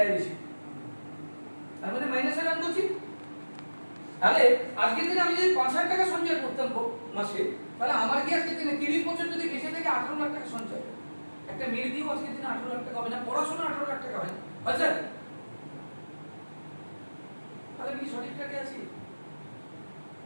বেশি, তার মানে মাইনাসে রান করছি। তাহলে আজকের দিনে আমি যদি 5,000 টাকা সঞ্চয় করতাম মাসে, তাহলে আমার কি আজকের দিনে 30 বছর যদি বেঁচে থেকে 18 লাখ টাকা সঞ্চয়, একটা মেয়ে দিয়েও আজকের দিনে 18 লাখ টাকা হবে না, পড়াশোনা 18 লাখ টাকা হবে, আচ্ছা তাহলে কি সঠিক টাকা আছি?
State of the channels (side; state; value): both; inverted; correlation -1.00